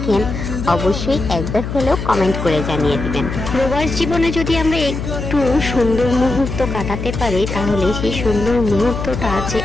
অবশ্যই একবার হলেও কমেন্ট করে জানিয়ে দিবেন। প্রবাস জীবনে যদি আমরা একটু সুন্দর মুহূর্ত কাটাতে পারি তাহলে সেই সুন্দর মুহূর্তটা যে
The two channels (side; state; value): left; noise; hum, 5 dB below the sound